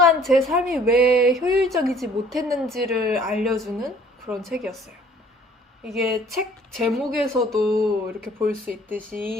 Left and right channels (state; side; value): normal; both; correlation 0.55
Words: 제 삶이 왜 효율적이지 못했는지를 알려주는 그런 책이었어요. 이게 책 제목에서도 이렇게 볼 수